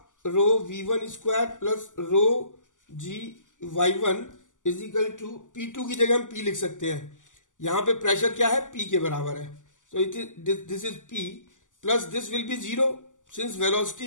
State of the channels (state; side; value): late; right; 0.87 ms